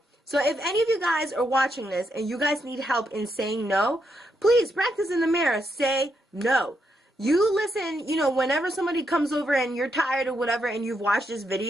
So if any of you guys are watching this and you guys need help in saying no, please practice in the mirror. Say no. You listen, whenever somebody comes over and you're tired or whatever and you've watched this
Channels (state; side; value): normal; both; correlation 0.80